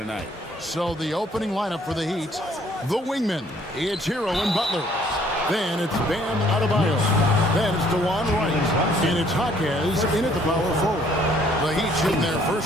So the opening lineup for the Heat, the wingmen, it's Hero and Butler. Then it's Bam Adebayo. Then it's DeJuan Wright. And it's Jaquez in at the power forward. The Heat shooting their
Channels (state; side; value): normal; both; correlation 0.62